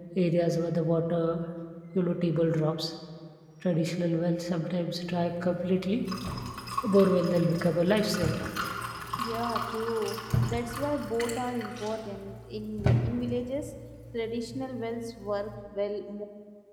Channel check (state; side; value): identical; both; correlation 1.00